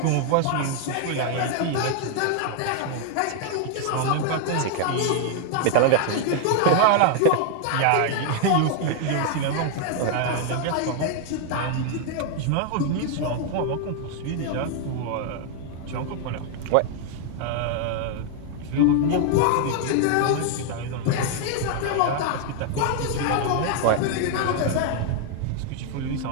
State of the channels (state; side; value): different; both; correlation 0.00